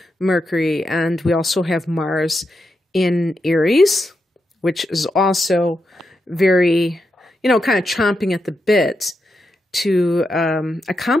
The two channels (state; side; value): normal; both; correlation 0.85